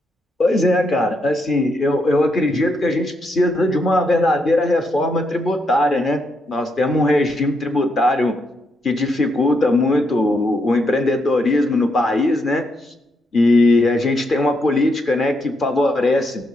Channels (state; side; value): normal; both; correlation 0.79